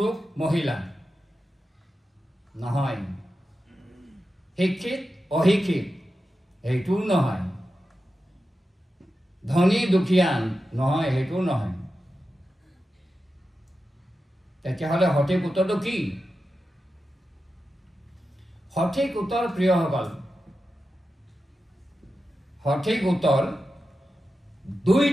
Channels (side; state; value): both; normal; correlation 0.91